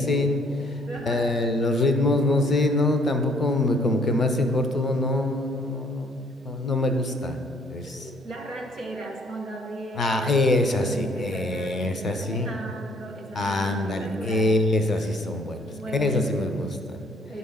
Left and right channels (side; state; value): both; normal; correlation 0.62